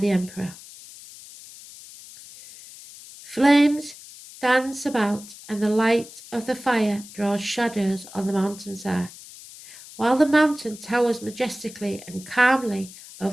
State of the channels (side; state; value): left; noise; hiss, 18 dB below the sound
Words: Emperor. Flames dance about, and the light of the fire draws shadows on the mountainside. While the mountain towers majestically and calmly